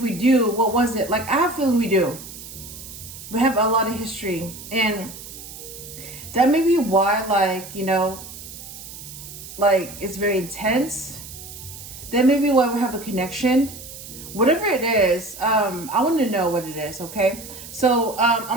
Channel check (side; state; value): right; noise; hiss, 14 dB below the sound